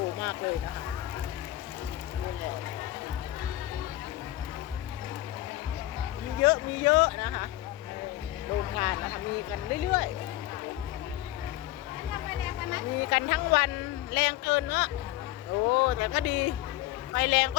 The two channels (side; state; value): right; quieter; 15.9 dB